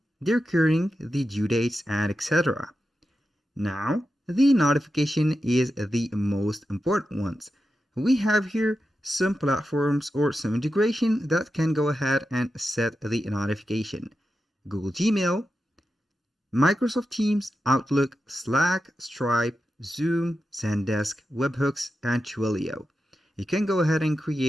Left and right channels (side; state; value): both; normal; correlation 0.90